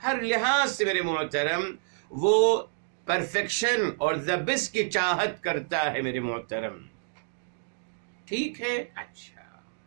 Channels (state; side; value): silent; left; digital silence